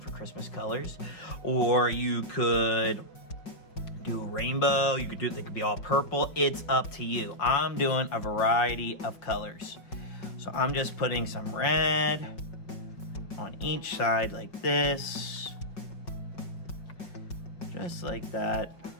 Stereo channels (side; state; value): right; late; 5.3 ms